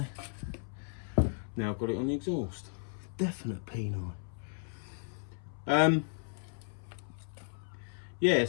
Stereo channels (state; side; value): silent; right; 55 dB below the other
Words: Now I've got it on the exhaust. Definite peni. Yeah,